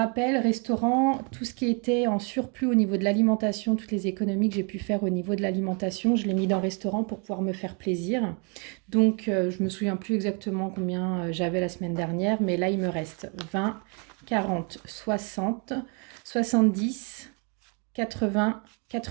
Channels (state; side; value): quieter; left; 36.1 dB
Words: restaurant, tout ce qui était en surplus au niveau de l'alimentation, toutes les économies que j'ai pu faire au niveau de l'alimentation, je l'ai mis dans restaurant pour pouvoir me faire plaisir. Donc, je me souviens plus exactement combien j'avais la semaine dernière, mais là, il me reste 20, 40, 60, 70, 80,